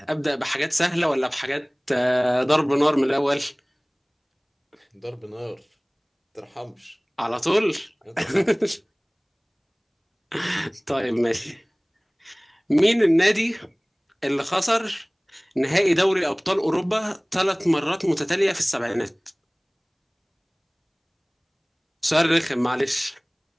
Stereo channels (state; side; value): identical; both; correlation 1.00